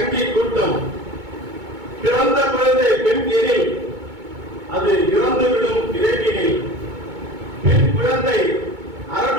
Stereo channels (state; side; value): late; left; 2.2 ms